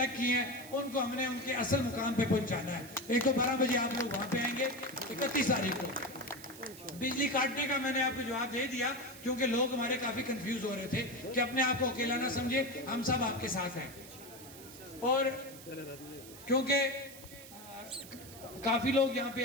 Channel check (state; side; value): noise; right; hiss, 16 dB below the sound